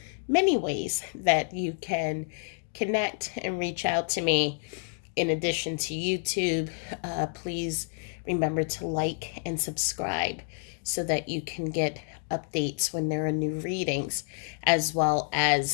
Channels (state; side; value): silent; right; digital silence